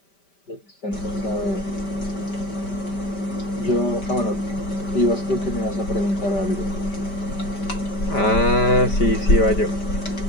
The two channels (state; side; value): late; right; 5.1 ms